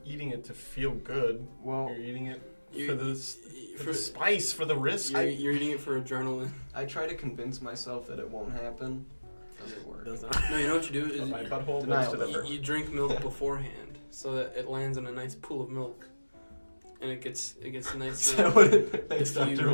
eating it to feel good. Well, You're eating it You- for the spice, for the risk. You're eating it for adrenaline. I try to convince myself that it won't happen. Doesn't work. Does not. No, you know what you do is My butthole Denial. goes to the you drink milk beforehand so that it lands in a nice pool of milk, and it gets Is nicely. that what it makes Diffused. Dr.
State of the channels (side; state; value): both; inverted; correlation -1.00